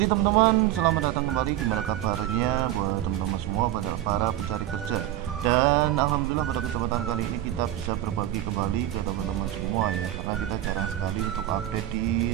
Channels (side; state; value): left; quieter; 13.3 dB